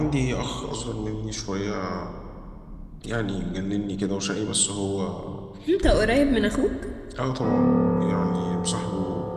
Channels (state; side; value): identical; both; correlation 1.00